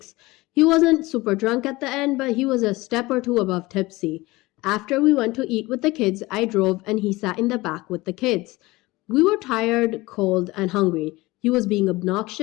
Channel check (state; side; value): quieter; right; 20.7 dB